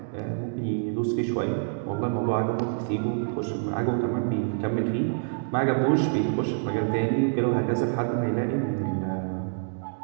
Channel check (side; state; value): left; silent; digital silence